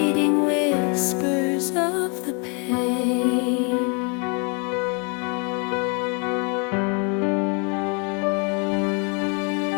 whispers of the pain.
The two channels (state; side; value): quieter; right; 34.8 dB